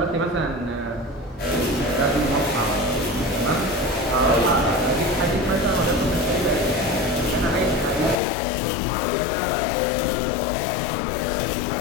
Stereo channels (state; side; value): drops out; right; at 8.2 s